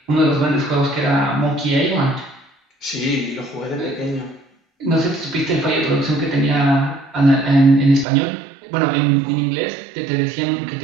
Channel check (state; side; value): drops out; left; at 8.1 s